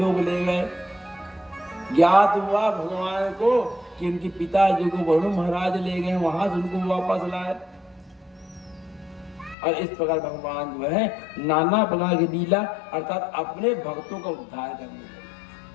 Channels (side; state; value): right; drops out; at 9.6 s